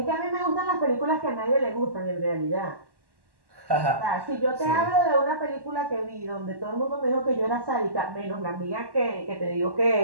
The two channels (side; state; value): left; late; 1.1 ms